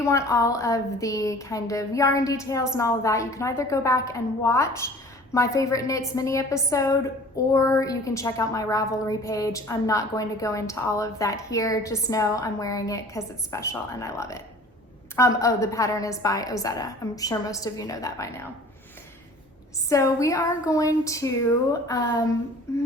want all of the kind of yarn details and all of that, you can either go back and watch my favorite knits mini episode, or you can check out my Ravelry page. I'm not going to go into all of that here. Just know I'm wearing it because it's special and I love it. Oh, the pattern is by Ozetta. I'm sure most of you know that by now. So we are going to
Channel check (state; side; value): normal; both; correlation 0.46